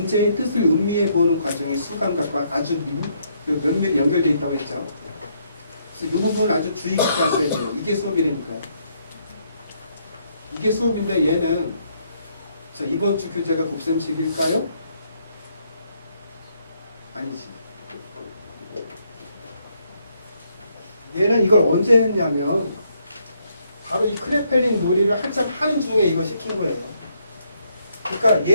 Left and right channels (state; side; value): inverted; both; correlation -0.72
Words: 뜻을 음미해 보는 과정이 수감각과 아주 면밀히 연결되어 있다고 했죠. 그래서 이 부분을 아주 주의 깊게 하셔야 돼요. 이게 수업이니까. 이게 수업인데 얘는 자, 이번 주 교재가 곱셈식일까요? 아니지. 얘는 이걸 언제 했냐면 바로 이 크레펠린 놀이를 한참 하는 중에 이거 시킨 거예요. 그러니까